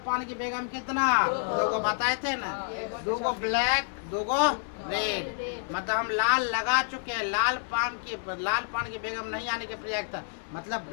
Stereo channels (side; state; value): right; silent; digital silence